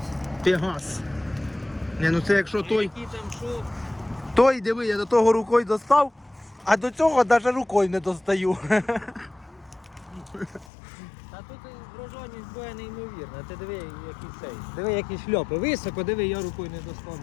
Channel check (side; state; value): right; drops out; at 10.7 s